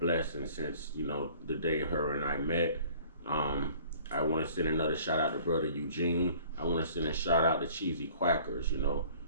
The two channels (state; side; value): inverted; both; correlation -0.51